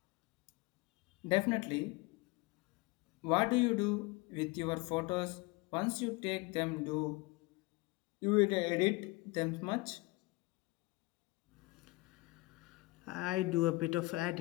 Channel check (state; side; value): quieter; right; 23.4 dB